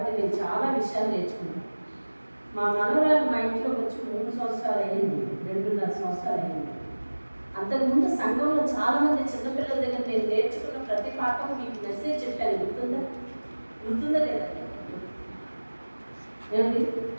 నేను చాలా విషయాలు నేర్చుకున్నాను. మా మనవరాలు మా ఇంట్లో వచ్చి 3 సంవత్సరాలు అయ్యింది, 2.5 సంవత్సరాలు అయ్యింది. అంతకుముందు సంఘంలో చాలామంది చిన్నపిల్లల దగ్గర నేను నేర్చుకున్న ప్రతి పాఠం మీకు మెసేజ్ చెప్పాను. గుర్తుందా లేదా? ఏమండి,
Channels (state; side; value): inverted; both; correlation -1.00